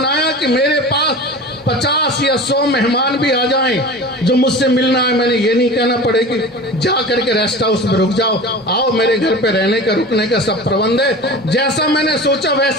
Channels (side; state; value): both; normal; correlation 0.35